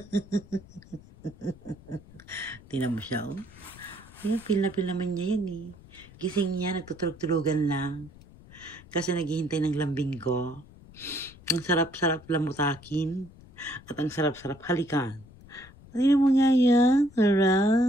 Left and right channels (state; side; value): noise; left; rumble, 22 dB below the sound